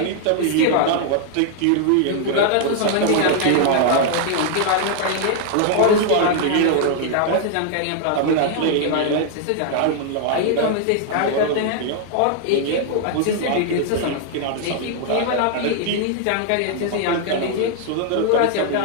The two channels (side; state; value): both; different; correlation 0.00